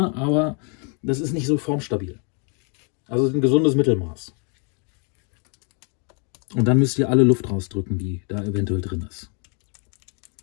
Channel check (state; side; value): quieter; right; 38.0 dB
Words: aber das ist nicht so formstabil. Also ein gesundes Mittelmaß. Und dann müsst ihr alle Luft rausdrücken, die da eventuell drin ist.